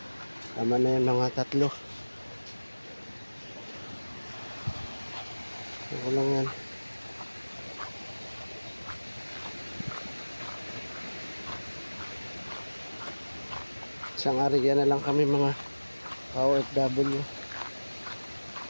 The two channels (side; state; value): both; inverted; correlation -1.00